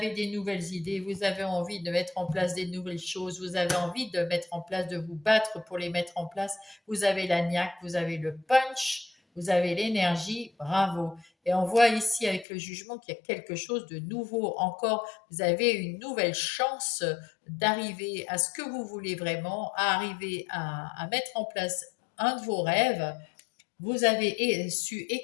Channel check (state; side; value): drops out; right; at 12.5 s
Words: des nouvelles idées, vous avez envie de mettre en place des nouvelles choses, vous avez envie de mettre en place, de vous battre pour les mettre en place. Vous avez la niaque, vous avez le punch, vous avez l'énergie, bravo. Et on voit ici avec le jugement qu'il y a quelque chose de nouveau encore. Vous avez une nouvelle chance d'arriver à ce que vous voulez vraiment, à arriver à mettre en place un de vos rêves. Vous avez su